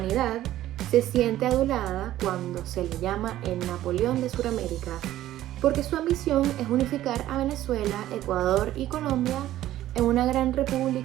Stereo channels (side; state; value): left; quieter; 13.8 dB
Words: se siente adulada cuando se le llama el Napoleón de Sudamérica, porque su ambición es unificar a Venezuela, Ecuador y Colombia en una gran